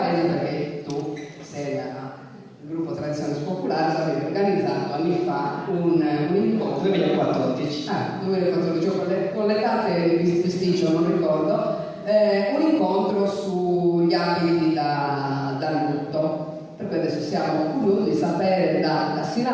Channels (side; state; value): both; identical; correlation 1.00